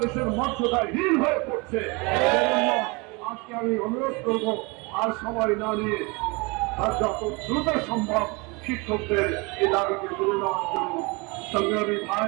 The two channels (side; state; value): left; quieter; 27.6 dB